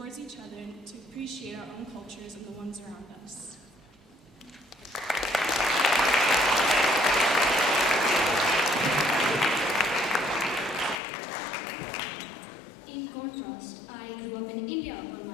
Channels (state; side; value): drops out; right; at 11.0 s